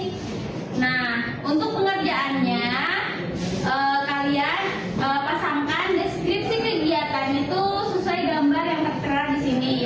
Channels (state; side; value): identical; both; correlation 1.00